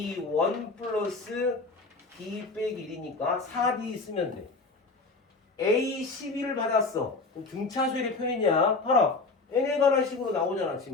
플러스 D 빼기 1이니까 4D 쓰면 돼. A12를 받았어. 그럼 등차수열의 표현이야. 봐라. n에 관한 식으로 나오잖아.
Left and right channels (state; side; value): quieter; right; 3.7 dB